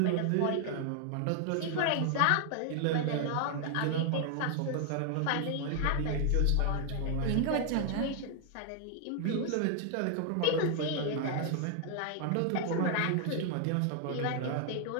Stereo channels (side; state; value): both; different; correlation 0.00